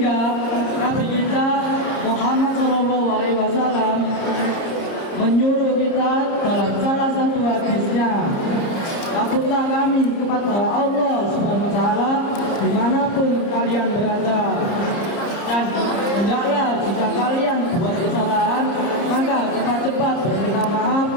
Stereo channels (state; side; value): late; right; 30 ms